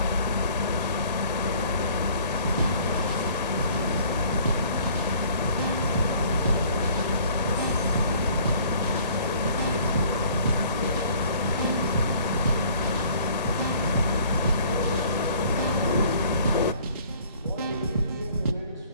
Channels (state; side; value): inverted; both; correlation -0.55